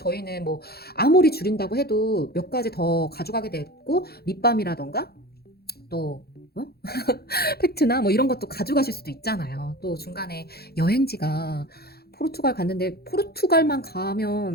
뭐 아무리 줄인다고 해도 몇 가지 더 가져가게 됐고 립밤이라던가 또 팩트나 뭐 이런 것도 가져가실 수도 있잖아요. 또 중간에 여행지가 포르투갈 갔는데 포르투갈만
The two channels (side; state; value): right; late; 0.46 ms